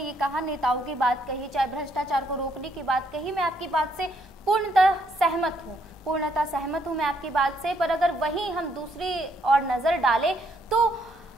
कहा नेताओं की बात कही, चाहे भ्रष्टाचार को रोकने की बात कही, मैं आपकी बात से पूर्णतः सहमत हूँ मैं आपकी बात से। पर अगर वहीं हम दूसरी और नजर डालें तो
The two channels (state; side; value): normal; both; correlation 0.72